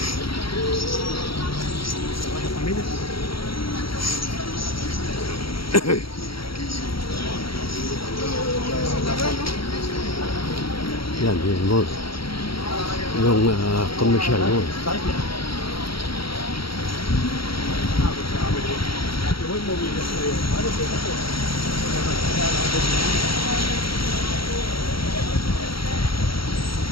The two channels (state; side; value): late; right; 0.75 ms